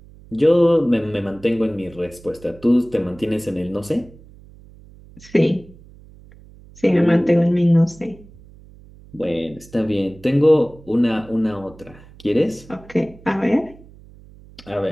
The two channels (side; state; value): right; noise; hum, 23 dB below the sound